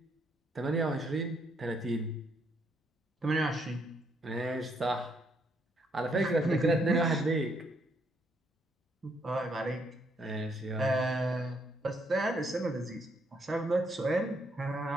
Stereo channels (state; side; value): normal; both; correlation 0.73